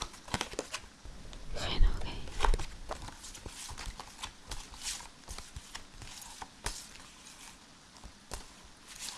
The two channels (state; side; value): identical; both; correlation 1.00